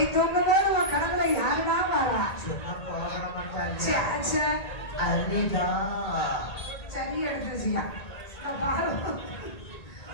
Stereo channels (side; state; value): right; late; 1.8 ms